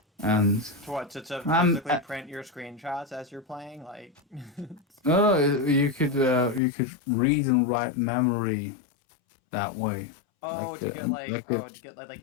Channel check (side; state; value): right; drops out; at 6.6 s